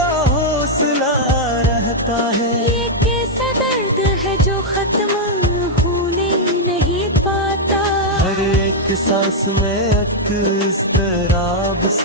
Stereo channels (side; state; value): both; normal; correlation -0.03